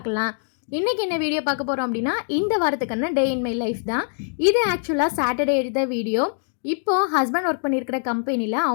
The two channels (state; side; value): silent; right; digital silence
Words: இன்றைக்கி என்ன வீடியோ பார்க்க போகிறோம் அப்படின்னா, இந்த வாரத்துக்கான டே இன் மை லைஃப் தான். இது ஆக்சுவலாக சாட்டர்டே எடுத்த வீடியோ. இப்போது ஹஸ்பண்ட் ஒர்க் பண்ணியிருக்கிற கம்பெனியில்